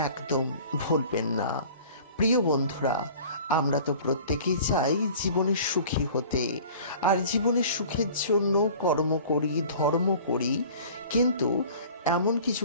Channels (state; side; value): inverted; both; correlation -0.45